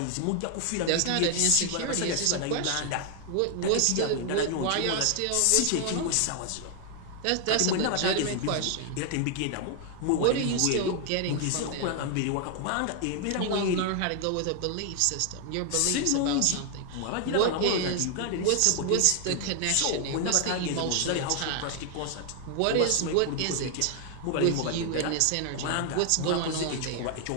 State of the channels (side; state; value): both; different; correlation 0.00